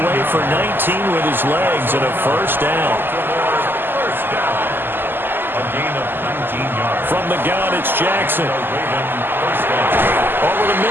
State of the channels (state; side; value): late; left; 0.096 ms